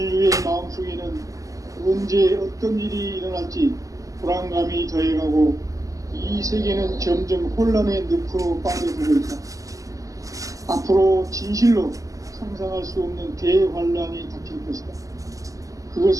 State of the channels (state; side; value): late; left; 0.16 ms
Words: 마음속에는 언제 어떤 일이 일어날지 불안감이 더해가고 이 세계는 점점 혼란의 늪으로 빠져들고 있다. 앞으로 진실로 상상할 수 없는 대환란이 닥칠 것이다.